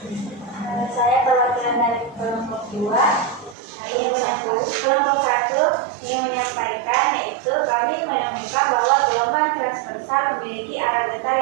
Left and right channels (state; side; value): drops out; left; at 3.6 s